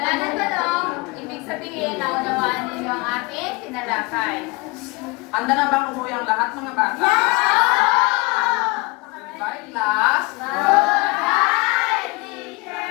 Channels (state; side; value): quieter; right; 25.5 dB